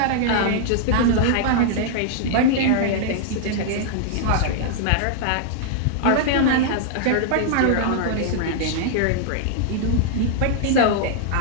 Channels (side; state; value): both; different; correlation -0.01